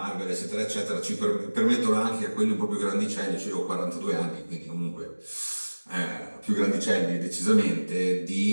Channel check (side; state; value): both; inverted; correlation -1.00